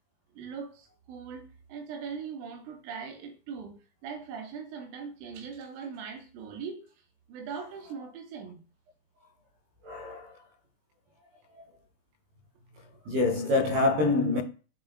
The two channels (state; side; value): late; left; 20 ms